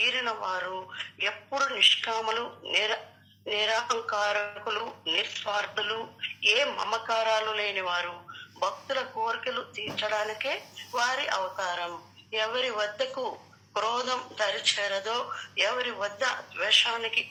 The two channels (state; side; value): identical; both; correlation 1.00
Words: వారు ఎప్పుడు నిష్కాములు, నిరహంకారకులు, నిస్వార్థులు, ఏ మమకారాలు లేని వారు. భక్తుల కోరికలు తీర్చడానికే వారి అవతారం. ఎవరి వద్దకు క్రోధం దరిచేరదో, ఎవరి వద్ద ద్వేషానికి